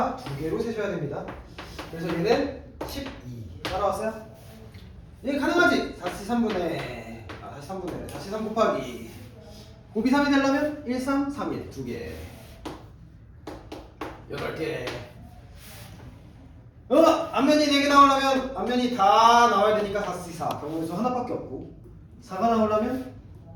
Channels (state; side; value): identical; both; correlation 1.00